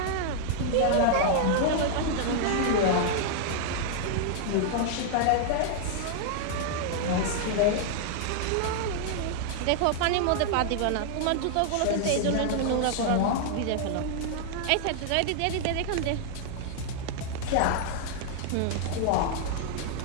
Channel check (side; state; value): both; different; correlation -0.01